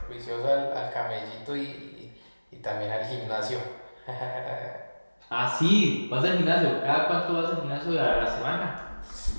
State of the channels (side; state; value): both; inverted; correlation -1.00